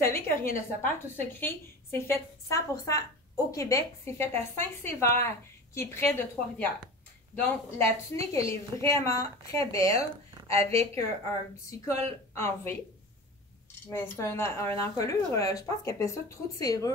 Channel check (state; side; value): normal; both; correlation 0.33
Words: que Rien ne se perd, tout se crée, c'est fait 100% au Québec. C'est fait à Saint-Sévère, qui est près de Trois-Rivières. Donc, la tunique, elle est vraiment très belle avec un petit col en V. Mais c'est un encolure, je pense qu'elle appelle ça trou de